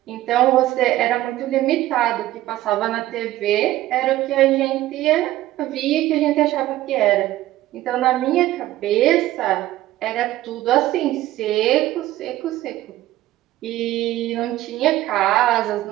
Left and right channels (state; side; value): quieter; left; 15.3 dB